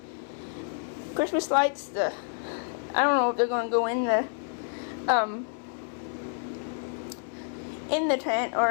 Christmas lights, I don't know if they're going to go in the tent or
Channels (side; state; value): right; silent; 59 dB below the other